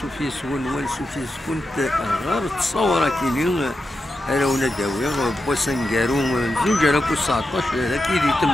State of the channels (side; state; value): both; normal; correlation 0.88